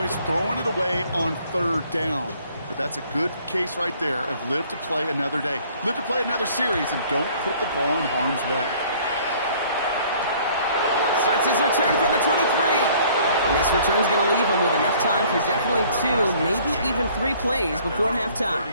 throwing it away on 3rd down. But that's a good case right there of live to play another day. Live to play another series and don't put the ball in harm's way. Starts his return from the 23. And this return's going to leave him with enough time for definitely 2, maybe even 3 plays before halftime.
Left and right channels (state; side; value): inverted; both; correlation -0.57